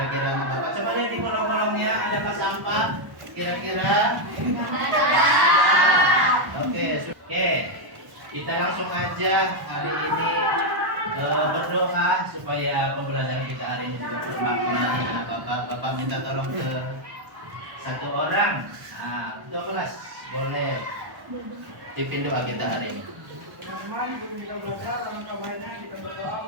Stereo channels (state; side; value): late; left; 1.1 ms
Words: anak bapak coba lihat di kolong-kolongnya adakah sampah? Kira-kira? Oke, kita langsung aja hari ini berdoa supaya pembelajaran kita hari ini juga bermakna. Anak bapak minta tolong ke satu orang. Ketua kelas boleh pimpin doa kita hari ini. Teman-teman, sebelum kita belajar, alangkah baiknya kita berdoa